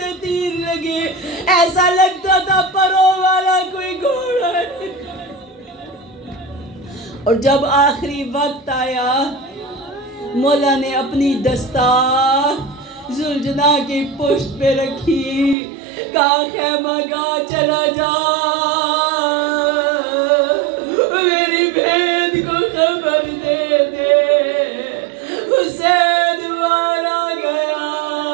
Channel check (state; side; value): drops out; left; at 15.6 s